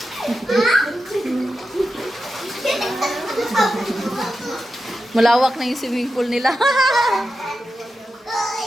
Malawak na yung swimming pool nila.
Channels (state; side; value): normal; both; correlation 0.90